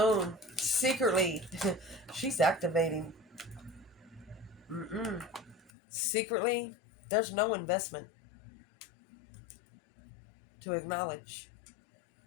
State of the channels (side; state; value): right; drops out; at 5.7 s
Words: Secretly, she's activating. Secretly, there's no investment to acknowledge.